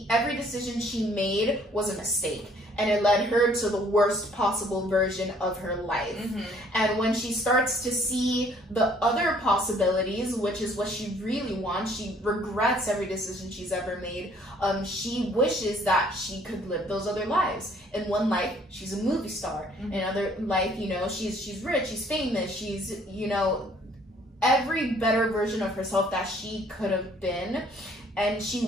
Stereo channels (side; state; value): both; normal; correlation 0.60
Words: every decision she made was a mistake. And it led her to the worst possible version of her life. And when she starts to see the other possibilities, which is what she really wants, she regrets every decision she's ever made. She wishes that she could live those other lives. In one life, she's a movie star. In another life, she's rich, she's famous, she's, every better version of herself that she could have been. And